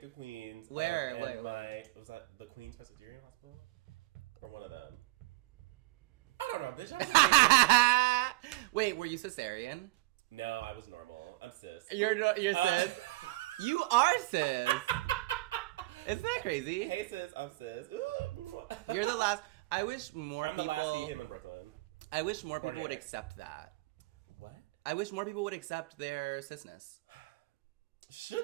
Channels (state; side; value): quieter; left; 21.6 dB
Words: Queens. Where? Was that the Queens Presbyterian Hospital, or one of them? I don't know, bitch. I was Wait, were you cesarean? No, I was normal. I'm cis. You're cis. You are cis. Isn't that crazy? Hey cis, I'm cis. Ooh. You're the last. I wish more I'm people... the last see him in Brooklyn. I wish more people would accept that. What? I wish more people would accept their cisness. Should